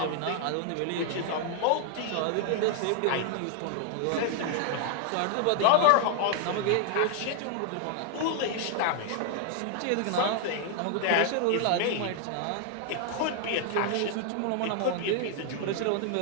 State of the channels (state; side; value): different; both; correlation 0.00